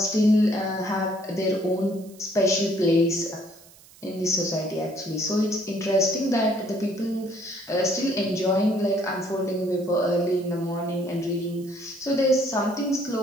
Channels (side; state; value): right; noise; hiss, 24 dB below the sound